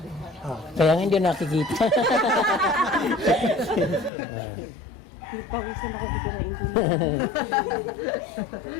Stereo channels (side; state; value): right; drops out; at 4.1 s